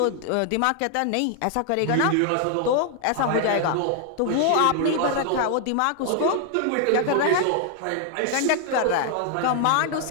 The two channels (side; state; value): both; different; correlation 0.00